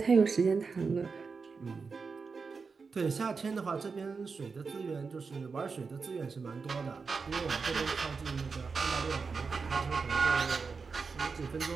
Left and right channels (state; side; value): quieter; left; 4.9 dB